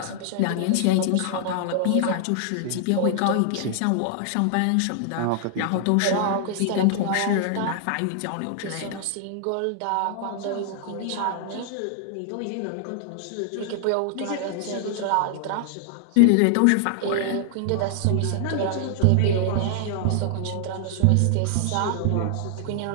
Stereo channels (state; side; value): different; both; correlation 0.00